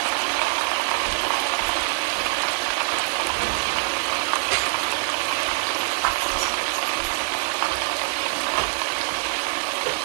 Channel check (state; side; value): silent; left; 63 dB below the other